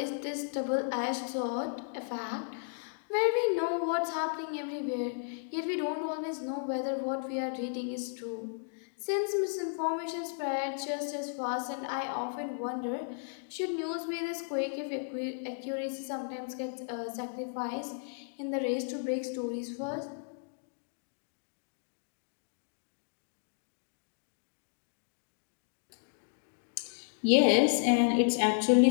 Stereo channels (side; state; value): right; silent; digital silence